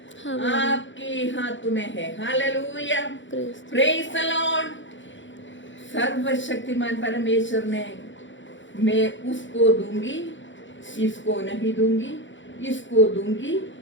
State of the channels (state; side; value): late; right; 0.55 ms